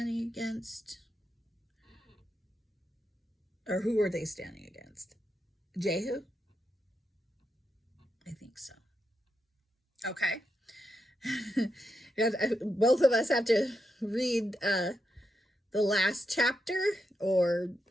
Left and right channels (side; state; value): both; normal; correlation 0.84